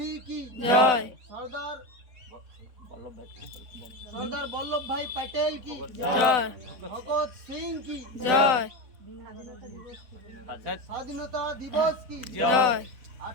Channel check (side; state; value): left; late; 3.9 ms